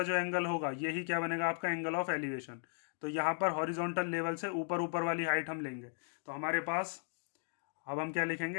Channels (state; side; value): silent; right; 53 dB below the other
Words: जो एंगल होगा यही क्या बनेगा, आपका एंगल ऑफ एलिवेशन। तो यहाँ पर हॉरिजॉन्टल लेवल से ऊपर ऊपर वाली हाइट हम लेंगे। तो हमारे पास अब हम क्या